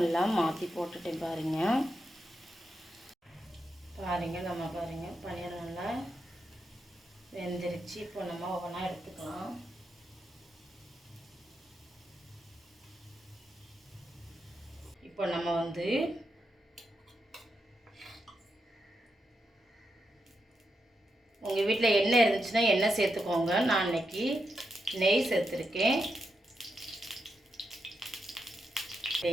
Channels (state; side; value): normal; both; correlation 0.85